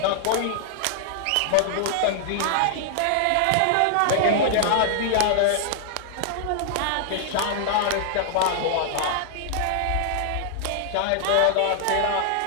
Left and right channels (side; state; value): both; different; correlation -0.01